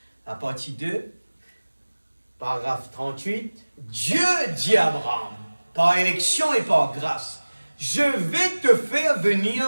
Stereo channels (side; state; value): both; inverted; correlation -1.00